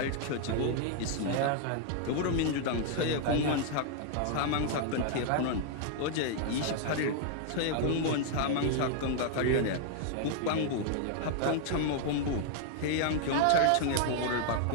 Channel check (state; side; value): different; both; correlation 0.00